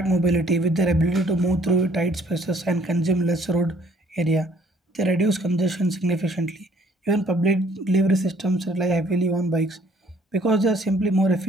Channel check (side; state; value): both; normal; correlation 0.60